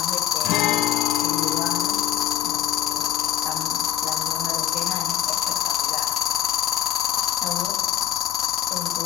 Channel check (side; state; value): right; quieter; 11.2 dB